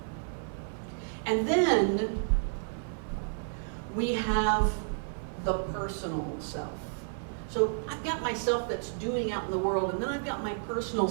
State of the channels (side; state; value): left; silent; digital silence